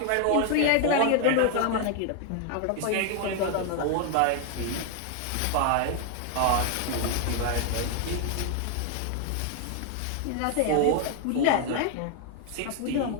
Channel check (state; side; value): different; both; correlation 0.00